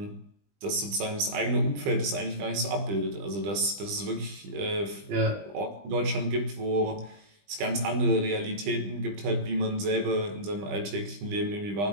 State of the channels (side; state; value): left; late; 20 ms